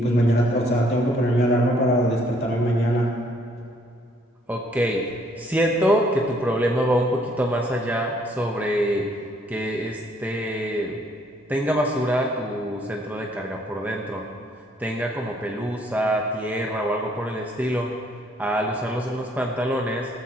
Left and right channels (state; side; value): normal; both; correlation 0.65